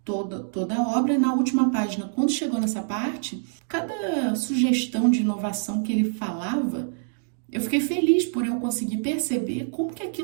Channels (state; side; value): silent; left; digital silence